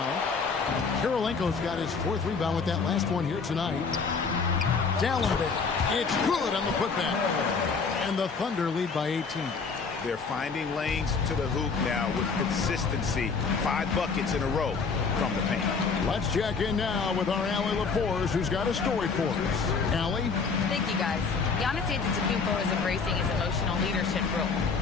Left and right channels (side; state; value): right; quieter; 5.1 dB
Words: Kirilenko's got his 4th rebound with that last one here tonight. Dallenberg. It's good on the putback. And the Thunder lead by 18. They're finding lanes to the hoop now with consistency. 5 buckets in a row from the paint. Let's check in now with our Allie LaForce, who's got a story for us. Allie? Thank you, guys. Giannis Antetokounmpo is embracing his emotional leadership role.